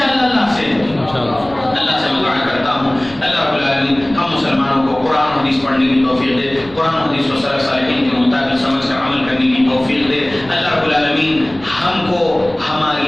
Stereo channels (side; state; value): left; noise; rumble, 22 dB below the sound